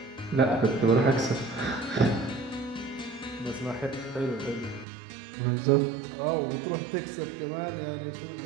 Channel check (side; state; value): left; drops out; at 4.9 s